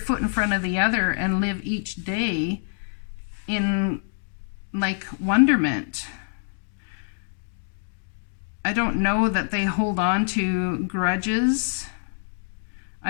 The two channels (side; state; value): right; silent; digital silence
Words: in front of the other and live each day in like wonderment. I don't know that they hold on to grudges.